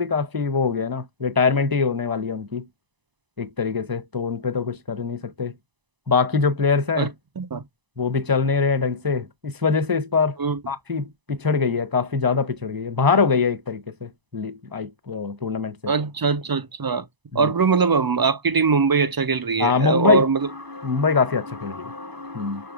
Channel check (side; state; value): left; late; 1.0 ms